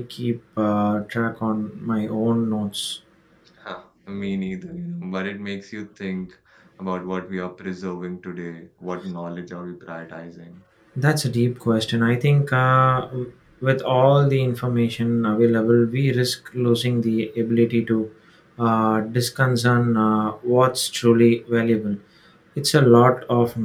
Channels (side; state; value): both; identical; correlation 1.00